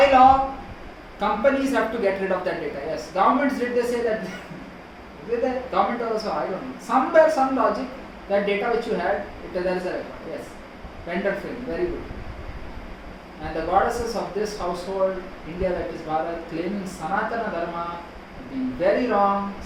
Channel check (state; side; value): identical; both; correlation 1.00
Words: law, companies have to get rid of that data, yes. Governments, did they say that? Did the government also, I don't know. Somewhere, some logic, that data which you had, there is a record, yes. Vendor film, very good. And the goddesses of this household, India, that is Bharat, claiming Sanatana Dharma, being very wrong,